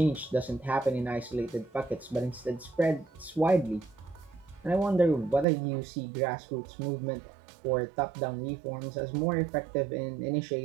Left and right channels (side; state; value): left; drops out; at 5.5 s